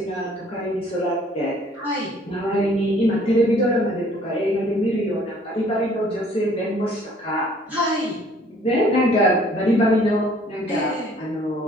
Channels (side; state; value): both; normal; correlation 0.57